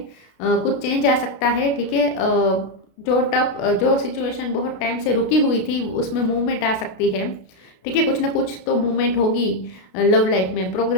कुछ चेंज आ सकता है, ठीक है। जो सिचुएशन बहुत टाइम से रुकी हुई थी उसमें मूवमेंट आ सकती है, ठीक है। कुछ ना कुछ तो मूवमेंट होगी लव लाइफ में,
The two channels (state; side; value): late; right; 32 ms